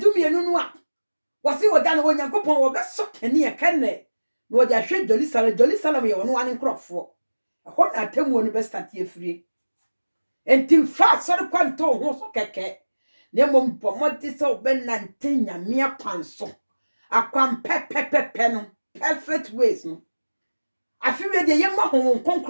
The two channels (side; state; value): both; inverted; correlation -1.00